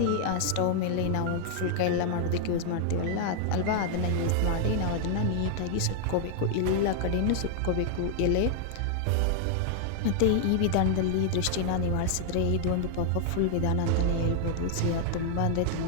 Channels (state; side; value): different; both; correlation 0.00